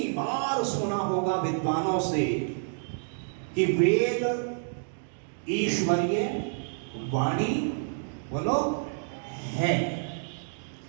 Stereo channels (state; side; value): silent; left; digital silence